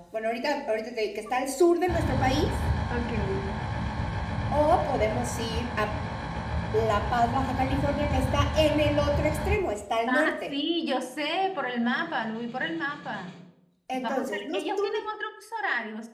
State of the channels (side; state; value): both; identical; correlation 1.00